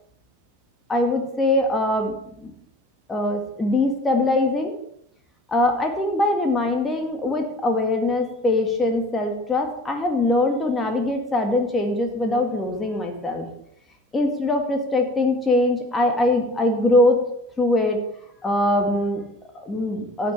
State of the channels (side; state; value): both; normal; correlation 0.46